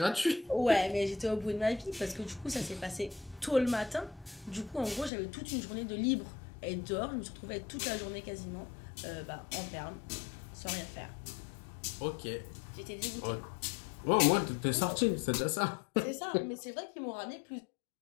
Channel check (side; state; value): right; drops out; at 5.1 s